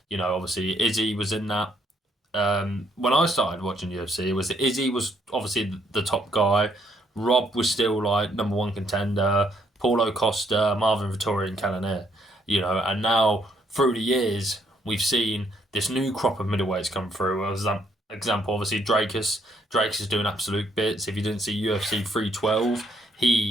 Obviously Izzy was in that. When I started watching UFC, it was Izzy was obviously the top guy. Rob was still like number one contender. Paulo Costa, Marvin Vettori, and Cannonier. And now through the years we've seen this new crop of middleweights come through. As an example, obviously Drakus. Drakus is doing absolute bits. If you didn't see UFC 312,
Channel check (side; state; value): both; normal; correlation 0.70